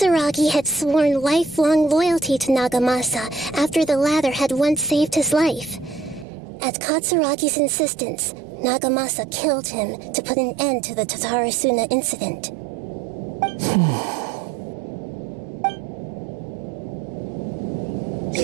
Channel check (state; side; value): drops out; left; at 6.2 s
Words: had sworn lifelong loyalty to Nagamasa after the latter had once saved his life. At Katsuragi's insistence, Nagamasa killed him to put an end to the Tatarasuna incident.